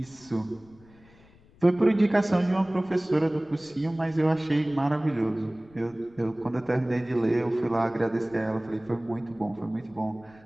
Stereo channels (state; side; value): noise; left; rumble, 27 dB below the sound